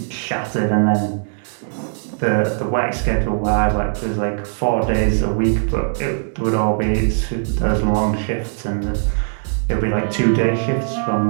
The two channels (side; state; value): left; silent; 66 dB below the other